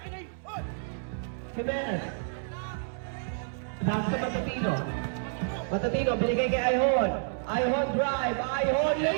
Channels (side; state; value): left; silent; digital silence